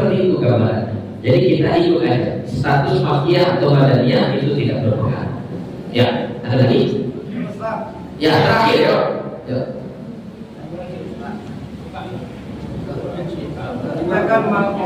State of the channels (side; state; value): both; identical; correlation 1.00